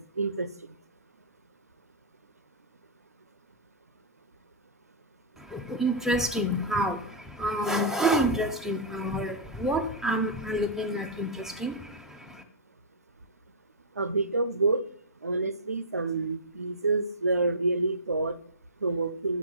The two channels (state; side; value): normal; both; correlation -0.13